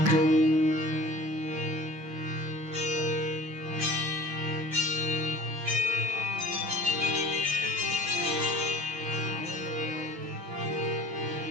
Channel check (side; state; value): left; late; 6.1 ms